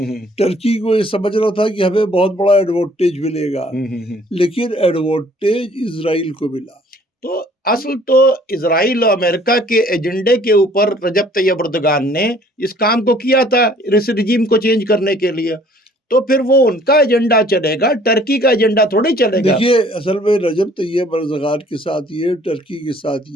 टर्की को ये समझ रहा था कि हमें बहुत बड़ा एडवांटेज मिलेगा, लेकिन एडवांटेज इजराइल को मिला। तो असल तो इजराइल और अमेरिका के एजेंडे के ऊपर रजब तैयब एर्दोगान ने इस काम को किया था, इस रिजीम को चेंज करने के लिए। तो फिर वो उनका एजेंडा चलेगा, टर्की का एजेंडा थोड़ी चलेगा। देखिए, असल में रजब तैयब एर्दोगान के साथ ये, टर्की के साथ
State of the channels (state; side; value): normal; both; correlation 0.57